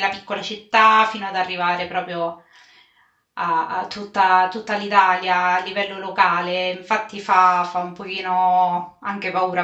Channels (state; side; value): identical; both; correlation 1.00